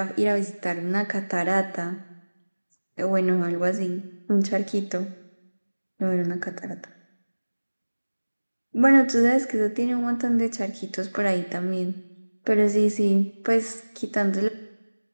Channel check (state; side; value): inverted; both; correlation -1.00